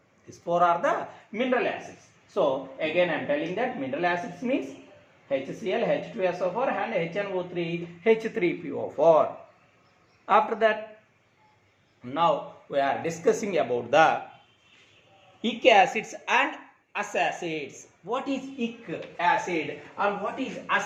These four are the mineral acids. So again I am telling that mineral acids means HCl, H2SO4 and HNO3, H3PO4. After that, now we are discussing about the ic acids and us acids. What is ic acid and what is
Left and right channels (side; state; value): both; identical; correlation 1.00